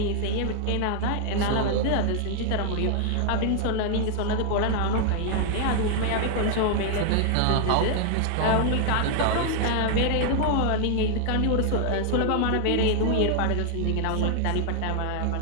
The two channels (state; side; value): different; both; correlation 0.00